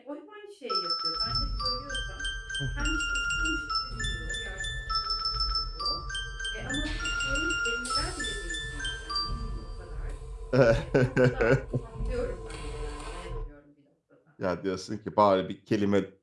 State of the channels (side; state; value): both; identical; correlation 1.00